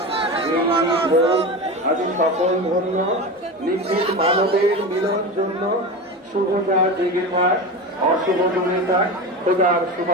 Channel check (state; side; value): normal; both; correlation 0.25